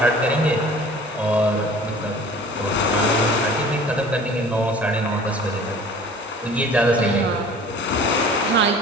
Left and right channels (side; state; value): both; normal; correlation 0.46